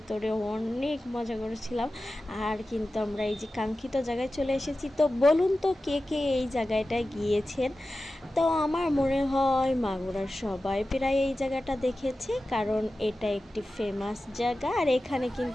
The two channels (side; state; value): both; normal; correlation 0.94